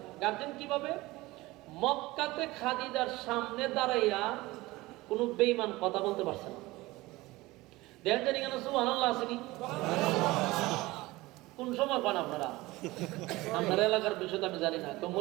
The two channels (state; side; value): quieter; left; 20.0 dB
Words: গার্জেন কিভাবে? মক্কাতে খাদিজার সামনে দাঁড়াইয়া কোনো বেঈমান কথা বলতে পারছে না। দেখেন জানি কেন সুবহানাল্লাহ আসেনি? কোন সময় পান আপনারা? আপনার এলাকার বিষয় তো আমি জানি না, তো